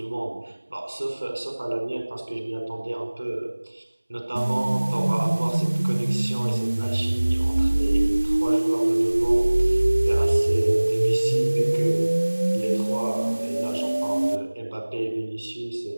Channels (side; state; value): both; inverted; correlation -1.00